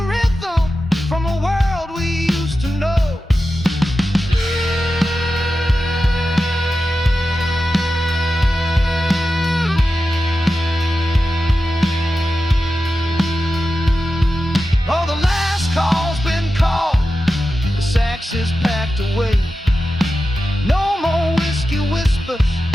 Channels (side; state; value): both; normal; correlation 0.92